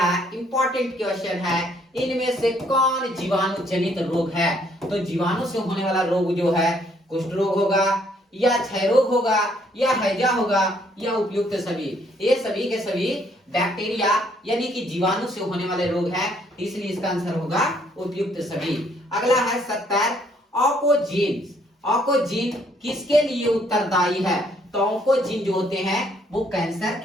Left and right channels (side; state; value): both; normal; correlation 0.67